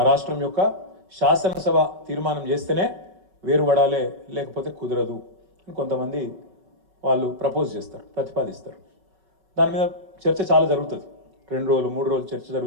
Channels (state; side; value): late; left; 5.3 ms